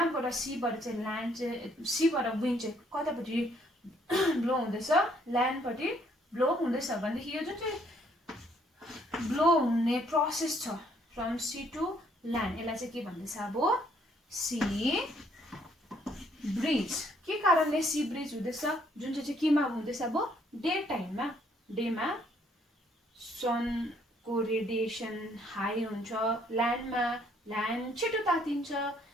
सीबाट चाहिँ ल्यान्ड चाहिँ सीबाट विन्ड चाहिँ कतापट्टि ब्लो हुँदैछ ल्यान्डपट्टि ब्लो हुँदैछ भनेदेखि यो जुन चाहिँ ब्लो हुने प्रोसेस छ फ्रम सी टु ल्यान्ड यसलाई चाहिँ के भन्दैछ अब सी ब्रिज के कारणले सी ब्रिज हुँदैछ जुन चाहिँ केमा हुँदैछ अब डे टाइममा डेमा सनको रेडिएसन हाई हुन्छ ल्यान्ड छिटो तातिन्छ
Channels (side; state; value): both; normal; correlation 0.66